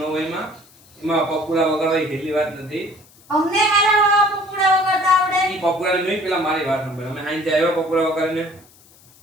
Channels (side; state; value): left; noise; hiss, 27 dB below the sound